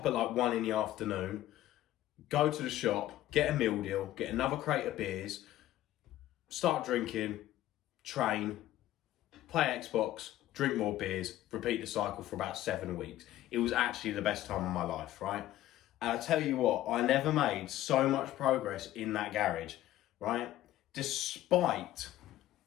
at like 1 in the afternoon, go to the shop, get a meal deal, get another crate of beers, start drinking, train, play Xbox, drink more beers, repeat the cycle for about 7 weeks. It was actually the best time of my life, right? And I tell you what, I never made so much progress in that garage, right? Despite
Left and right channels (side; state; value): right; quieter; 14.1 dB